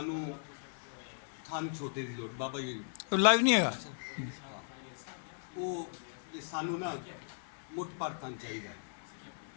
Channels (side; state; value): right; silent; digital silence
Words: थन छोटे की लोड़ बाबा जी लाइव नहीं हैगा। वो ये सानू ना मुठ पर थन चाहिए,